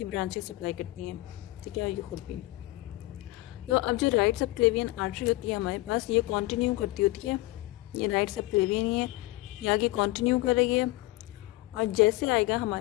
ब्रांचेस सप्लाई करती हैं, ठीक है, ये खुद भी। तो अब जो राइट सबक्लेवियन आर्टरी होती है हमारे पास, ये कंटिन्यू करती होती है, ये राइट सबक्लेवियन ही है, ये आगे कंटिन्यू कर रही है। और जैसे आएगा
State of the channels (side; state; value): right; quieter; 19.5 dB